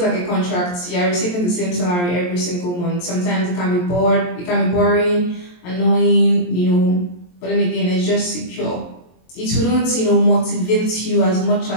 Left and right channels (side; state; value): right; late; 23 ms